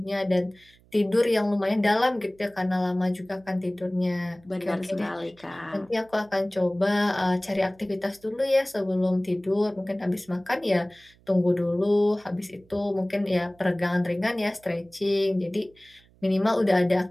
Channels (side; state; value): right; noise; hum, 30 dB below the sound